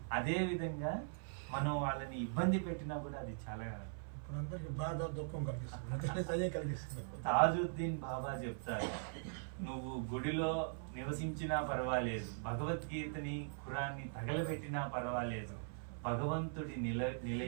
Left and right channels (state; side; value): silent; left; 50 dB below the other